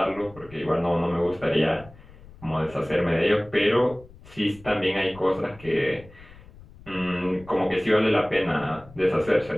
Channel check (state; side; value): noise; left; rumble, 21 dB below the sound